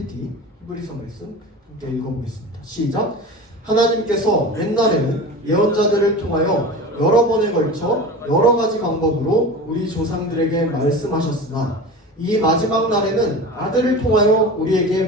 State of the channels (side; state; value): both; normal; correlation 0.32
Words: 히브리서 말씀 함께 읽어보겠습니다. 시작. 하나님께서 옛날에는 예언자들을 통하여 여러 번에 걸쳐 여러 가지 방법으로 우리 조상들에게 말씀하셨으나 이 마지막 날에는 아들을 통하여 우리에게